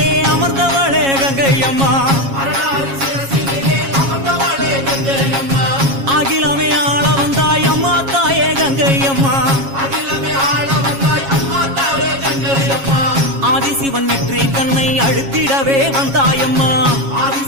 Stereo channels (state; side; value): late; left; 7.3 ms